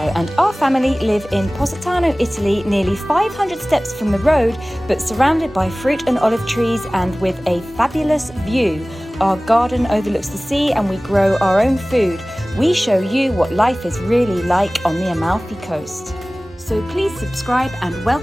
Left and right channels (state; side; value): normal; both; correlation 0.98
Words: and our family live in Positano, Italy, nearly 500 steps from the road, but surrounded by fruit and olive trees and with a fabulous view. Our garden overlooks the sea and we grow our own food. We show you what life is really like on the Amalfi Coast. So please subscribe and